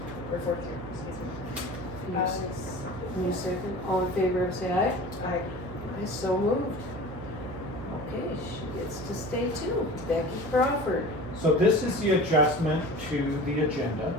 Or 4th year, excuse me. Can you s- can you second, all in favor of say aye? Aye. Aye, so moved. Okay, she gets to stay too, Becky Crawford. So this is the adjustment to the agenda.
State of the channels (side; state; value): right; noise; hum, 12 dB below the sound